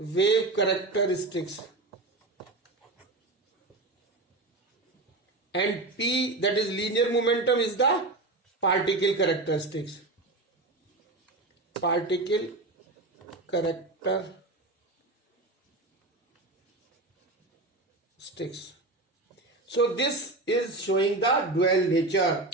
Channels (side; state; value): left; quieter; 3.0 dB